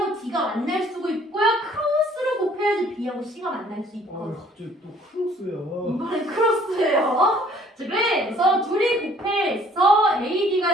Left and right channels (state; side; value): normal; both; correlation 0.58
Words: D가 만날 수가 있고요. 크로스로 곱해야지 B하고 C가 만날 수 있고. 갑자기 또 크로스야. 이번엔 크로스예요. 자, 그래서 둘이 곱해서